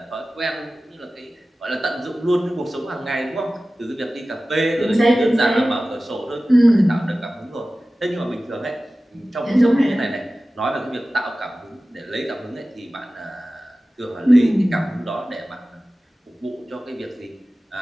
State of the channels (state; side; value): normal; both; correlation 0.96